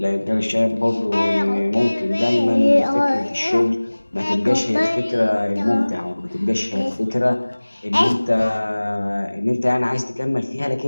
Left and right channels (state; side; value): inverted; both; correlation -1.00